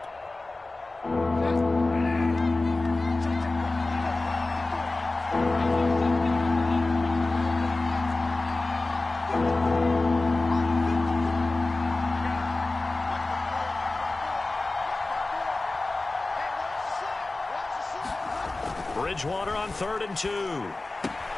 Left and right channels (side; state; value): right; quieter; 3.1 dB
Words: Bridgewater on 3rd and 2.